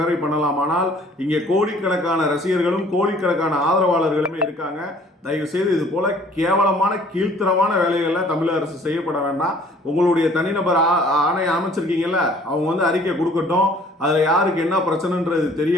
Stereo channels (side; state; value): both; normal; correlation 0.55